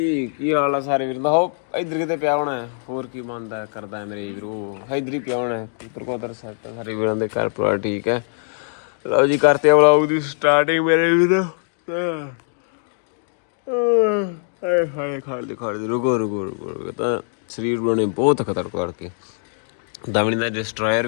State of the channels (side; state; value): right; silent; digital silence